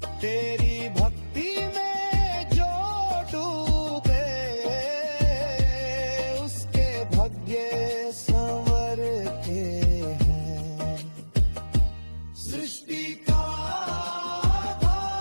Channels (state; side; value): inverted; both; correlation -1.00